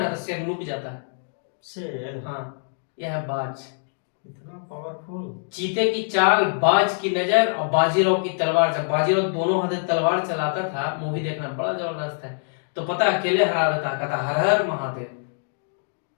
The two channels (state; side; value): silent; right; digital silence